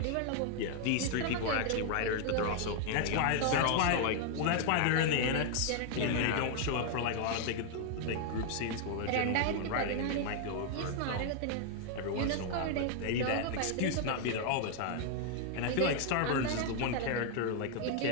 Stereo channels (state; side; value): different; both; correlation 0.00